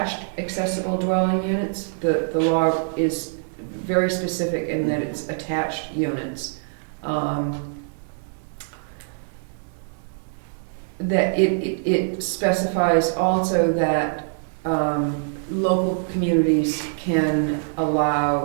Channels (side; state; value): left; silent; 61 dB below the other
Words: accessible dwelling units, the law is very specific in that it's attached units. That it specifies also that local communities can